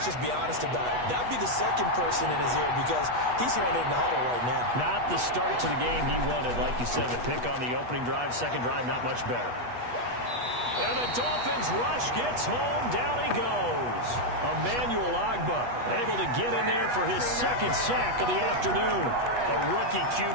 just be honest about it. That'd be the 2nd person in his ear because he's hearing it in the huddle right now. Not the start to the game he wanted. Like you said, the pick on the opening drive, 2nd drive, not much better. And the Dolphins rush gets home. Down he goes. Emmanuel Ogbah able to get in there for his 2nd sack of the afternoon. A rookie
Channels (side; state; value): left; late; 8.2 ms